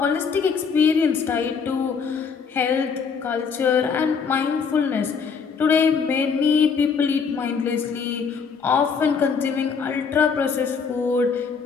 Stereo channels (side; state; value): right; quieter; 5.8 dB